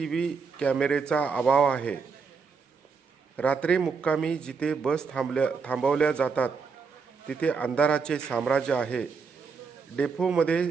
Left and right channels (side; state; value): left; quieter; 5.2 dB